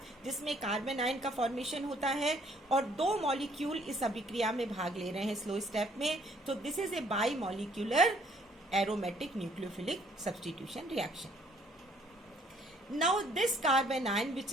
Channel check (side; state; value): both; normal; correlation 0.63